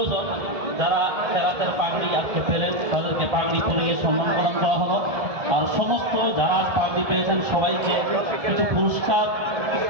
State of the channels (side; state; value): left; late; 1.7 ms